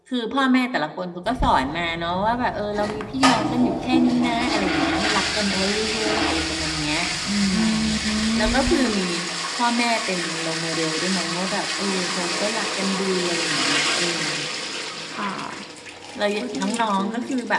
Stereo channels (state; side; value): identical; both; correlation 1.00